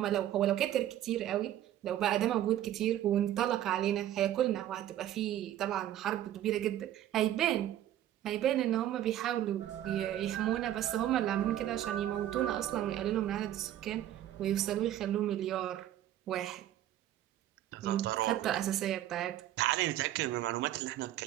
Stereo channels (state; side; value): quieter; left; 12.4 dB